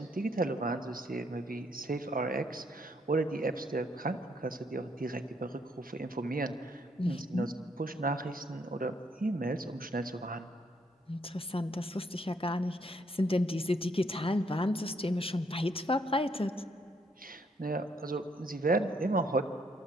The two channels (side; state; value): both; normal; correlation 0.70